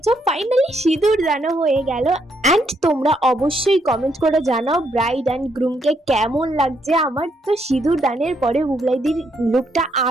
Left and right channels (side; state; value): both; normal; correlation 0.75